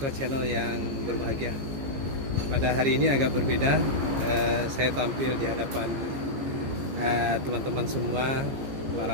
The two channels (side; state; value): left; late; 15 ms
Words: Channel yang berbahagia, pada hari ini agak berbeda. Saya tampil di hadapan teman-teman semua,